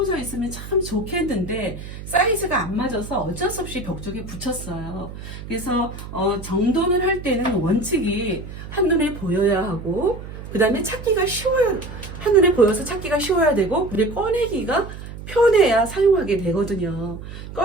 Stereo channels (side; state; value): right; noise; hum, 12 dB below the sound